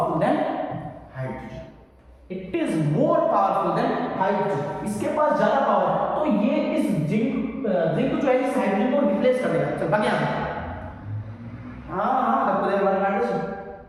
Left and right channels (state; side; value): identical; both; correlation 1.00